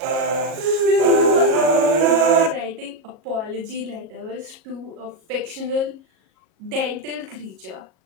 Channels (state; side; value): late; left; 37 ms